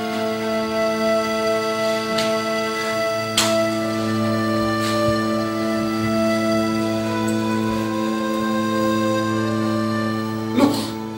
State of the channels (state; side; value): identical; both; correlation 1.00